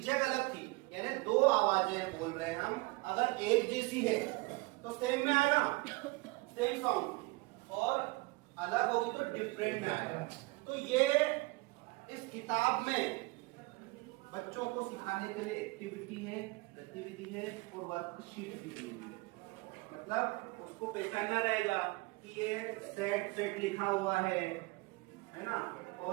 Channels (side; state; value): left; quieter; 24.1 dB